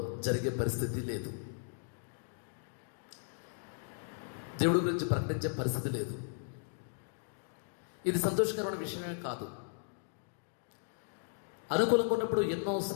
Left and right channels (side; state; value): right; silent; digital silence